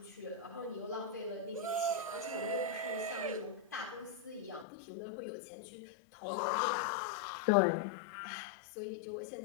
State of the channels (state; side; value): drops out; right; at 4.7 s